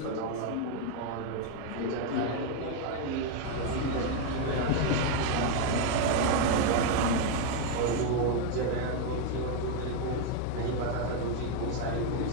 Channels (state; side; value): different; both; correlation 0.01